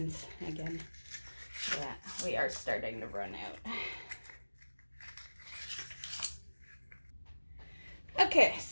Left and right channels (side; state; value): both; inverted; correlation -1.00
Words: again. Yeah, we are starting to run out. Okay,